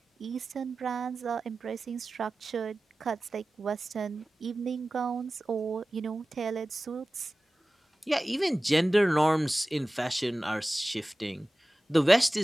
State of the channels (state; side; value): normal; both; correlation 0.97